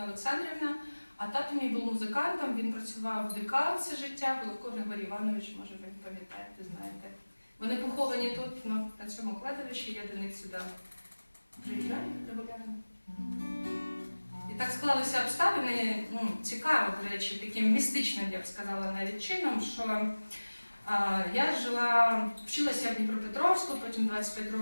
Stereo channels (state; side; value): inverted; both; correlation -1.00